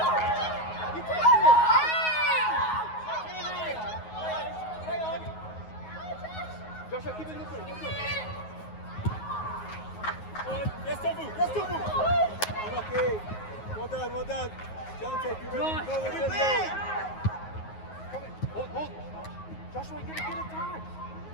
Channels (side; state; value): right; late; 9.4 ms